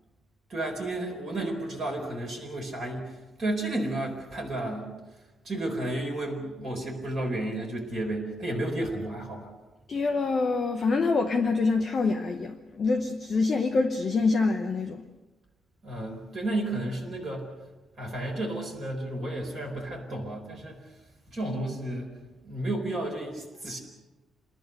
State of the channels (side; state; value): both; normal; correlation 0.82